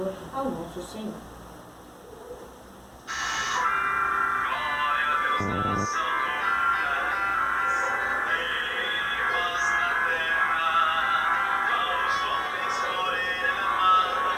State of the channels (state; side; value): identical; both; correlation 1.00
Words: ao nosso Senhor.